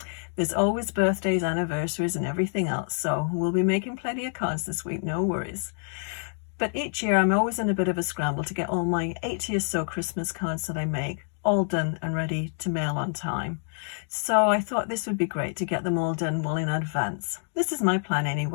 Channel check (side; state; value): right; silent; digital silence